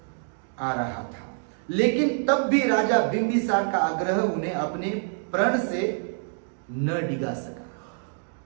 आ रहा था। लेकिन तब भी राजा बिंबिसार का आग्रह उन्हें अपने प्रण से न डिगा सका।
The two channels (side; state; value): left; silent; digital silence